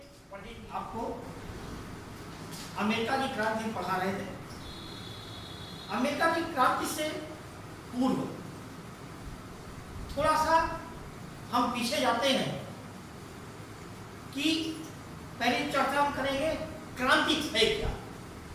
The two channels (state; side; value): identical; both; correlation 1.00